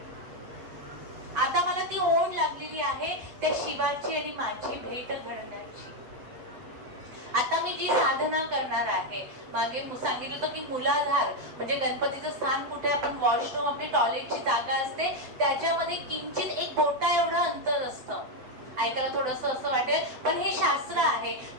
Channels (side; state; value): left; late; 7.9 ms